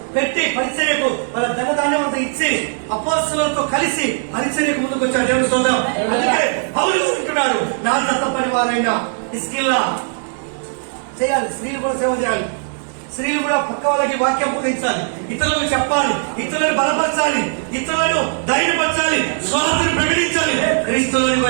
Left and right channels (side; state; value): left; silent; 60 dB below the other